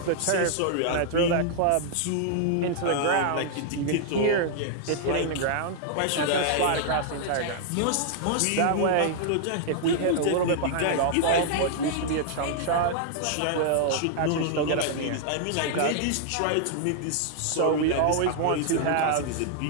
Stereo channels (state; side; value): different; both; correlation -0.01